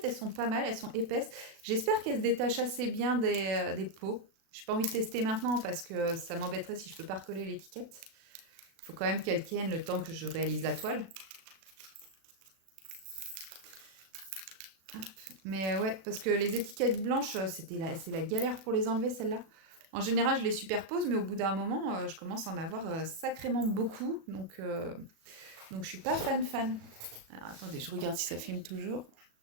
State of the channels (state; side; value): late; left; 37 ms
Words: elles sont pas mal, elles sont épaisses. J'espère qu'elles se détachent assez bien des peaux. J'ai pas envie de tester maintenant parce que ça m'embêterait si je peux pas recoller l'étiquette. Il faut quand même qu'elle tienne le temps que je réalise la toile. Mais ouais, parce que les étiquettes blanches, c'est la galère pour les enlever, celles-là. En général, je les superpose, mais au bout d'un moment, je commence à en avoir sacrément beaucoup. Donc je suis pas fan. Alors, attendez, je regarde si ça filme toujours.